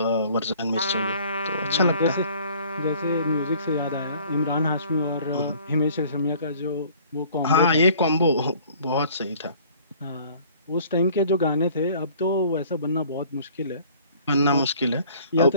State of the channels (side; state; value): both; inverted; correlation -0.53